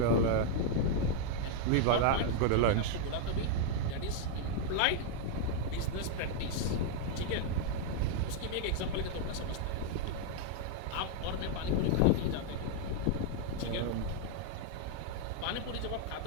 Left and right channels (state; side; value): different; both; correlation 0.00